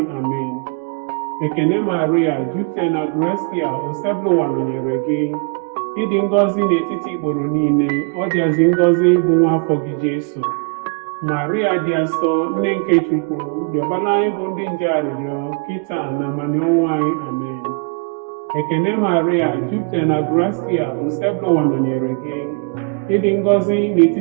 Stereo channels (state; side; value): quieter; left; 38.0 dB